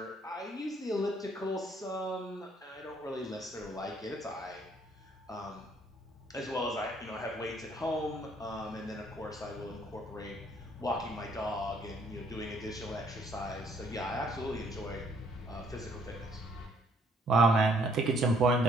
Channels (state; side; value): normal; both; correlation 0.65